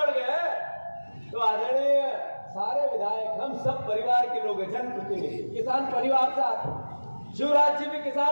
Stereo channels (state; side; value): inverted; both; correlation -1.00